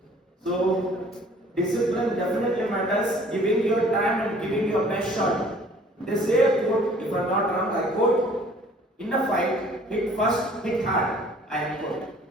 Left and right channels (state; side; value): normal; both; correlation 0.54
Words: So discipline definitely matters. Giving your time and giving your best shot. They say a quote, if I'm not wrong, I quote, in a fight, hit first, hit hard. I quote.